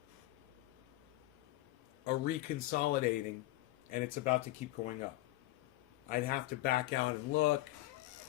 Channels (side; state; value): right; quieter; 17.1 dB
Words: reconsolidating, and it's about to keep going up. I'd have to back out and look.